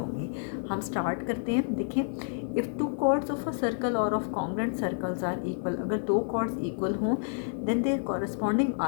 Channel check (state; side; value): silent; right; 58 dB below the other